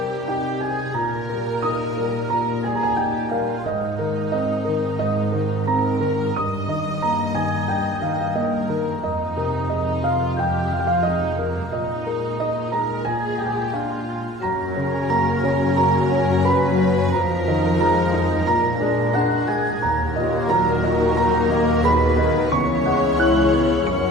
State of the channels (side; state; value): both; normal; correlation 0.50